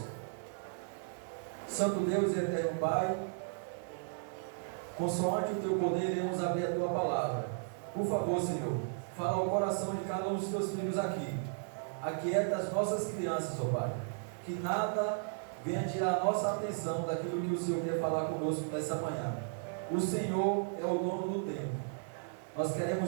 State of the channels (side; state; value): left; silent; 54 dB below the other